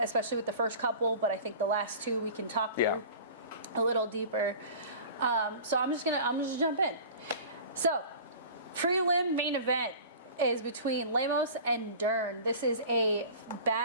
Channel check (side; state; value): both; inverted; correlation -0.40